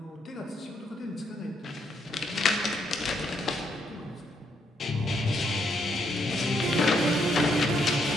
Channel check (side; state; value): both; normal; correlation 0.75